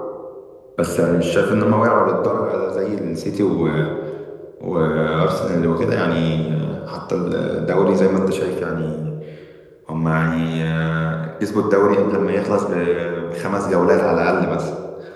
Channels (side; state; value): both; identical; correlation 1.00